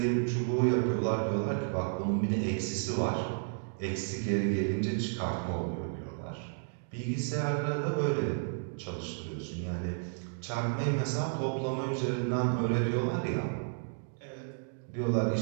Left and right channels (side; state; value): left; silent; digital silence